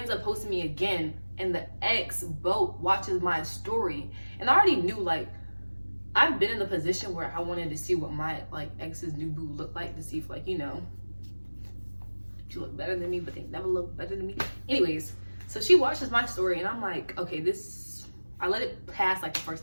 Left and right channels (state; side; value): inverted; both; correlation -1.00